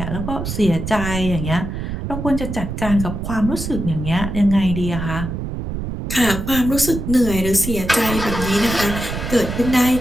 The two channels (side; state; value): right; noise; rumble, 5 dB below the sound